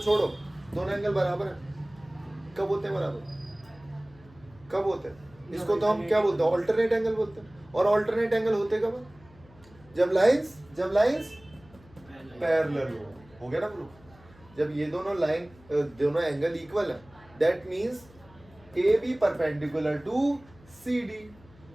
दोनों एंगल बराबर है। कब होते हैं बराबर? कब होते हैं? इसको तो हम क्या बोलते हैं? ऑल्टरनेट एंगल बोलते हैं। और ऑल्टरनेट एंगल होते कब? जब लाइंस पैरेलल हो गया ना प्रूफ? जब ये दोनों एंगल इक्वल है, that means A B perpendicular to C D,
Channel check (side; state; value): left; noise; hum, 26 dB below the sound